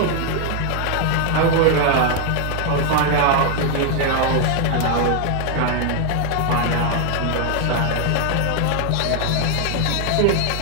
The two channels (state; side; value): different; both; correlation 0.01